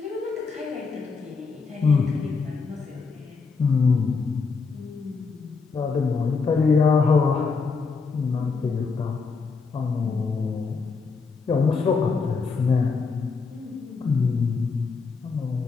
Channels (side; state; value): right; quieter; 4.8 dB